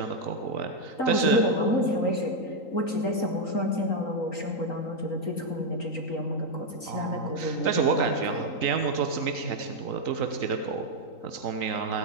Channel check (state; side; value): late; right; 3.9 ms